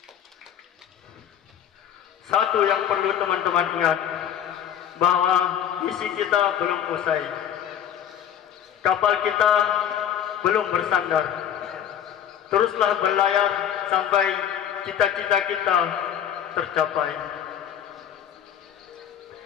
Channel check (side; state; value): right; quieter; 9.6 dB